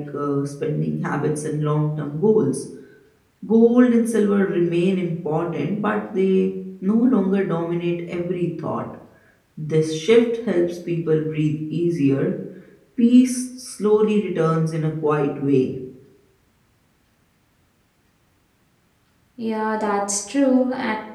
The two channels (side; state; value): both; identical; correlation 1.00